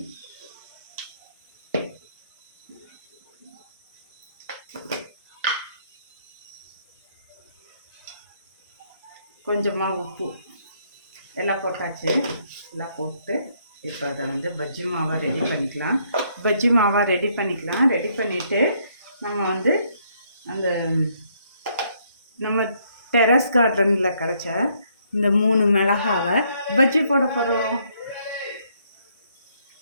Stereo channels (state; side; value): inverted; both; correlation -0.70